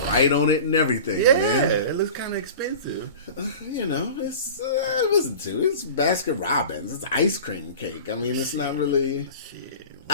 right on it and everything, Yeah, man. it looks kind of expensive. It's listen to it's Baskin Robbins. It's ice cream cake. I mean, it's not really. Shit.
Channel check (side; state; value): both; inverted; correlation -0.37